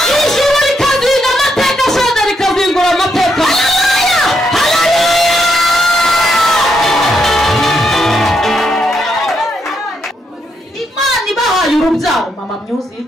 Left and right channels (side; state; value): both; normal; correlation 0.78